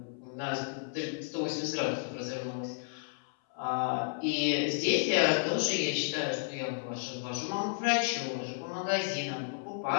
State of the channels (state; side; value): silent; right; 56 dB below the other